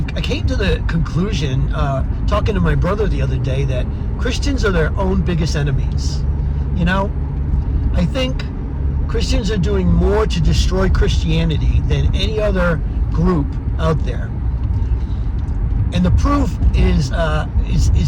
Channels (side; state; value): both; identical; correlation 1.00